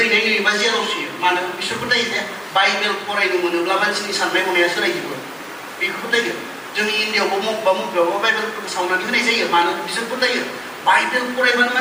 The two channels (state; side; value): identical; both; correlation 1.00